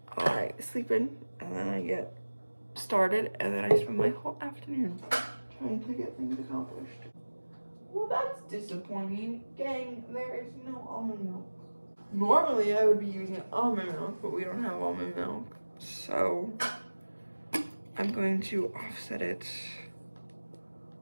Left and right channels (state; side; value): inverted; both; correlation -1.00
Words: I sleep in and then I get started and then I spend my whole afternoon trying to get things accomplished. Well, that's disappointing. Gang, there is no almond milk. Normally I would be using almond milk, but we don't have almond milk, so I'm going to offset it